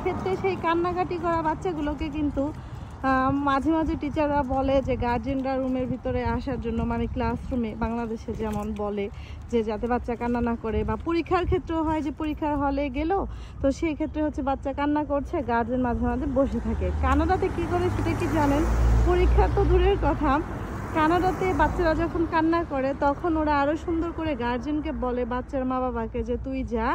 ক্ষেত্রে সেই কান্নাকাটি করা বাচ্চাগুলোকে কিন্তু মাঝে মাঝে টিচাররা বলে যে গার্জেনরা রুমের ভিতরে আসার জন্য, মানে ক্লাসরুমে বাংলাদেশে যেমন বলে যে যাতে বাচ্চা কান্না না করে। বা পরীক্ষার ক্ষেত্রেও হয় যে পরীক্ষার হলে গেল, তো সেই ক্ষেত্রে হচ্ছে বাচ্চা কান্না করছে, গার্জেন মাঝে মাঝে বসে থাকে। কানাডাতে কি করে সেটা কি জানেন? পরীক্ষা তো দূরের কথা, কানাডাতে বাচ্চারা যখন কান্না করে তখন ওরা আরো সুন্দর করে গার্জেনকে বলে, বাচ্চার মা বাবাকে, যে তুই যা,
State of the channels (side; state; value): both; identical; correlation 1.00